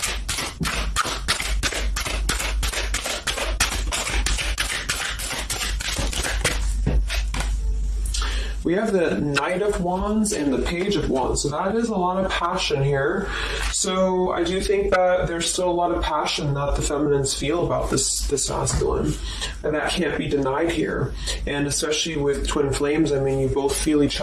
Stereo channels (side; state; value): both; identical; correlation 1.00